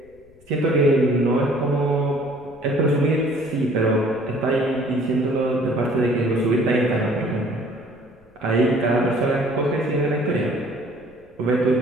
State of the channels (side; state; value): left; noise; rumble, 29 dB below the sound